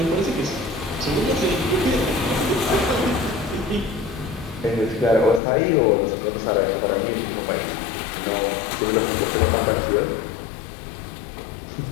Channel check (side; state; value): right; drops out; at 5.4 s